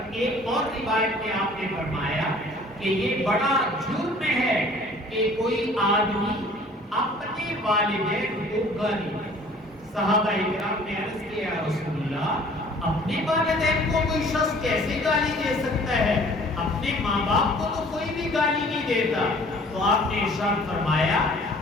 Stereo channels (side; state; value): both; normal; correlation 0.52